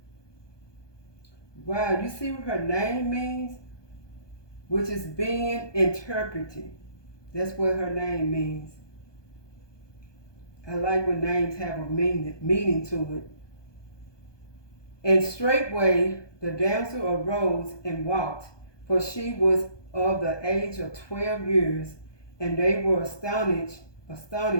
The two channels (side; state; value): right; late; 1.2 ms